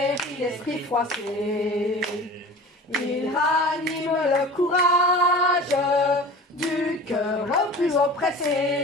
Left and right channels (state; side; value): normal; both; correlation 0.39